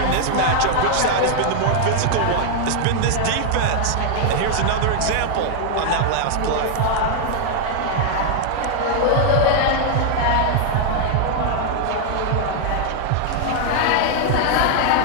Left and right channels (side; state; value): both; different; correlation 0.00